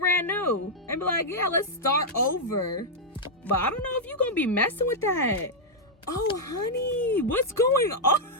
brand new and be like, yeah, let's start over. But I don't know if you're going to be messing with that. Oh, honey, what's going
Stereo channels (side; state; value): both; normal; correlation -0.04